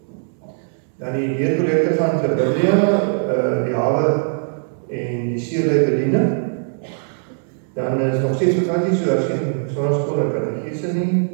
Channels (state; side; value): silent; left; digital silence